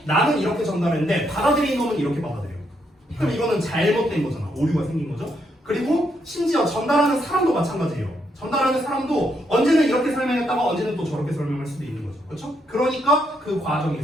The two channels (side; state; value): both; normal; correlation 0.77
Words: 나는 이렇게 전달했는데 받아들인 놈은 이렇게 받아들여요. 그럼 이거는 잘못된 거잖아. 오류가 생긴 거죠. 그리고 심지어 전달하는 사람도 마찬가지예요. 전달하는 사람도 언제는 이렇게 설명했다가 언제는 또 저렇게 설명할 수도 있는 거죠. 그렇죠? 그러니까 그